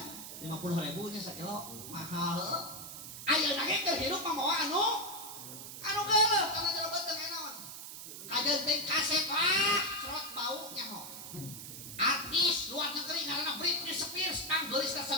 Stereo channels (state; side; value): noise; right; hiss, 10 dB below the sound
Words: 50.000 nya sakilo mahal. Ayeuna ge keur hirup mamawa anu geuleuh kana jero teu naon. Kajeun teh kaset serot bau nyaho. Artis luar negeri ngaranna Britney Spears kang geulis ka